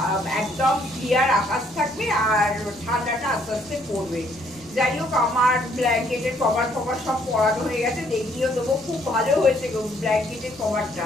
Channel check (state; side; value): noise; right; rumble, 27 dB below the sound